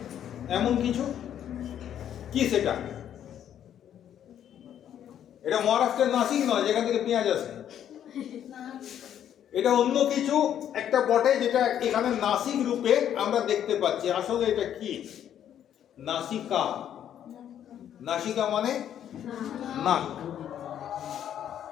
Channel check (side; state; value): right; quieter; 10.1 dB